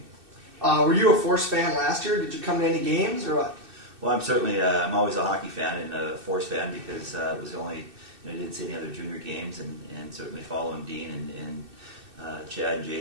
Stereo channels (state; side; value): late; left; 2.6 ms